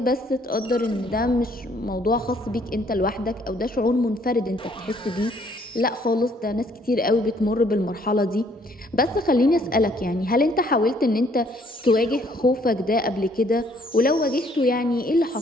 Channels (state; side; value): normal; both; correlation 0.64